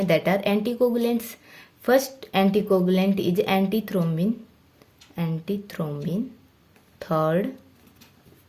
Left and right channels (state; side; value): identical; both; correlation 1.00